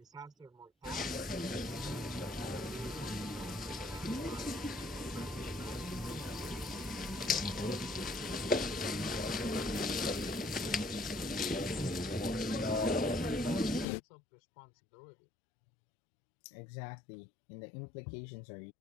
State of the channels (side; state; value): right; drops out; at 13.9 s